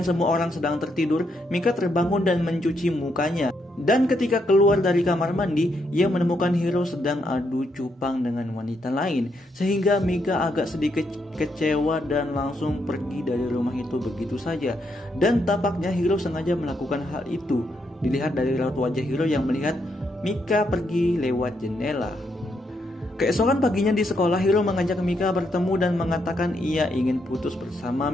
semua orang sedang tertidur, Mika terbangun dan mencuci mukanya. Dan ketika keluar dari kamar mandi, ia menemukan Hiro sedang adu cupang dengan wanita lain. Sehingga Mika agak sedikit kecewa dan langsung pergi dari rumah itu begitu saja. Dan tampaknya Hiro sengaja melakukan hal itu. Dilihat dari raut wajah Hiro yang melihat Mika pergi lewat jendela. Keesokan paginya di sekolah, Hiro mengajak Mika bertemu dan mengatakan ia ingin putus bersama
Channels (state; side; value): normal; both; correlation 0.78